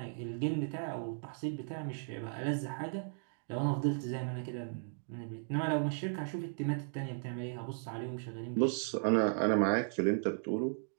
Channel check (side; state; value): left; silent; digital silence